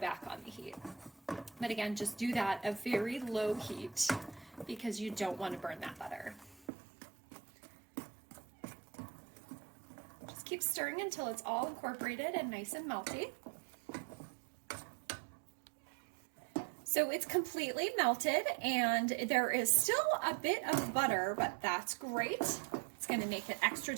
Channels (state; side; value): drops out; left; at 6.7 s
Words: on the heat. But again, just do that at very low heat because you don't want to burn that butter. Just keep stirring until it's all incorporated and nice and melty. So it's completely melted and there is still a bit of butter, but that's great. It's going to make it extra